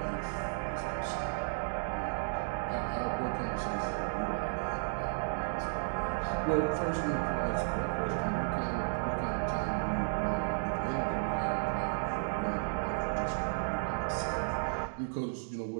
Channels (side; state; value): left; silent; digital silence